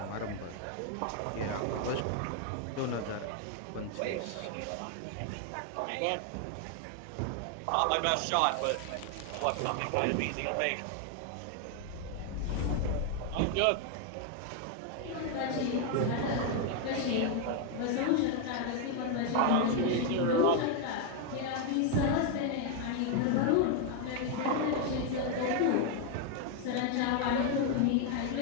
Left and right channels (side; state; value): both; different; correlation 0.01